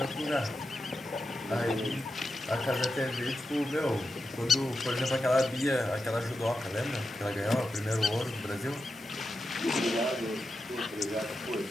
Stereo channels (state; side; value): normal; both; correlation 0.89